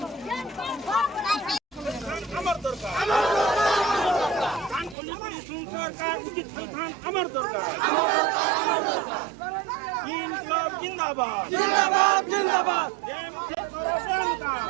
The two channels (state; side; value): drops out; left; at 5.0 s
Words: हमर दरकार कान खोली करी सुन सरकार उचित स्थान हमर दरकार इनकलाब जिंदाबाद